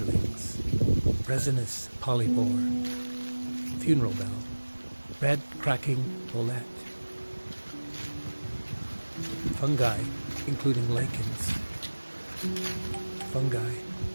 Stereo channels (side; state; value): both; inverted; correlation -1.00